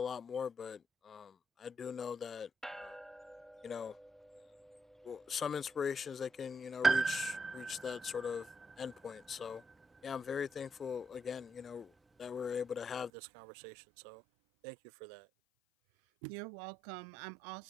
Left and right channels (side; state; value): left; drops out; at 13.1 s